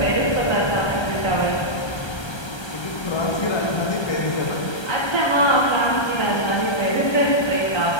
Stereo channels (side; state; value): right; late; 1.3 ms